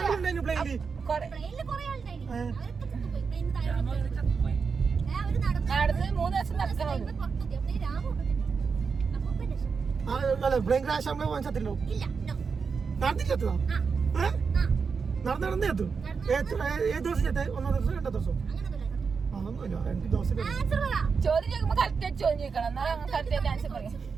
പ്ലെയിനിൽ പ്ലെയിനിൽ കുറെ ആളുണ്ടായിരുന്നു. അവരൊക്കെ ചത്തുപോയി. പ്ലെയിനിൽ താഴെ അവര് നടന്ന് 3 ദിവസം നടക്കണം. പുറത്തെത്തി. അപ്പൊ രാമു അപ്പൂപ്പൻ രക്ഷപ്പെട്ടു. പ്ലെയിൻ ക്രാഷ് നമ്മളെ വാങ്ങിച്ചല്ലോ. ഇല്ല, നോ. നടന്നിട്ടെത്തുക നടന്ന് എത്തും. ഏത് ദിവസം ചെത്തേ? 1 ദിവസം 2 ദിവസം? അതൊന്നുമില്ല, 2 ദിവസം. ചോദ്യം ചോദിക്കുമ്പോ കറക്റ്റ് ചോദ്യം ചോദിക്കണം. എന്നാലും കറക്റ്റ് ആൻസർ പറയാം.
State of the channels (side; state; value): left; quieter; 5.4 dB